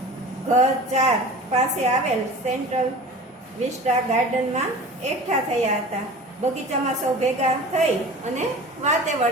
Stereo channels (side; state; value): both; normal; correlation 0.38